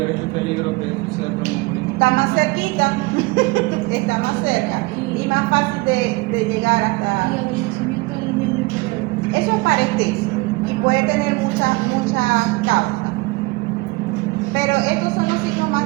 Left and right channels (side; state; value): left; quieter; 23.6 dB